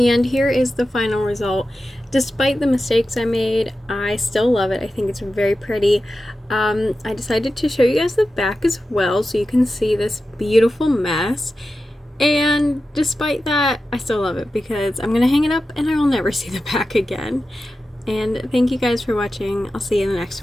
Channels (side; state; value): both; normal; correlation 0.92